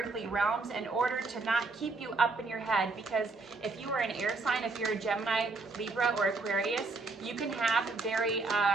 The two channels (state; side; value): quieter; left; 3.7 dB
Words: realms in order to not keep you up in your head, because if you are an air sign, if you're a Gemini, Libra, or Aquarius, you can have very